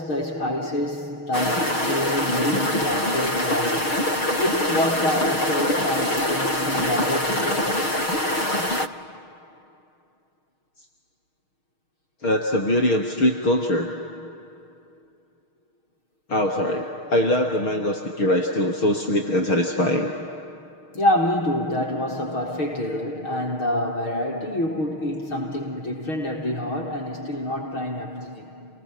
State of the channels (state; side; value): late; right; 6.4 ms